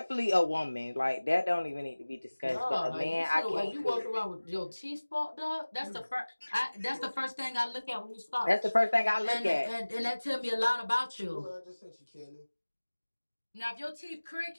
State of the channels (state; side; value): inverted; both; correlation -1.00